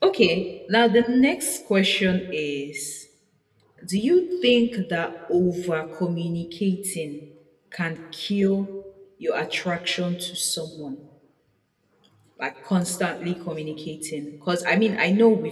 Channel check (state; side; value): identical; both; correlation 1.00